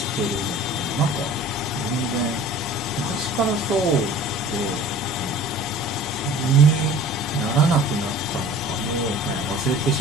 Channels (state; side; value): normal; both; correlation 0.44